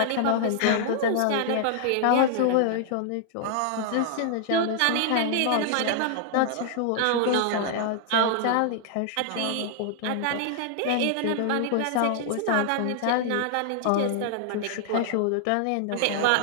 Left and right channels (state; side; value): different; both; correlation 0.00